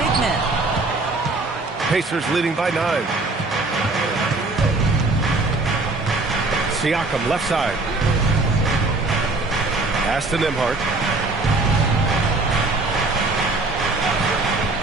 big men. Pacers leading by 9. Siakam left side. Pass to Nembhard.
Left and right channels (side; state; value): left; quieter; 3.3 dB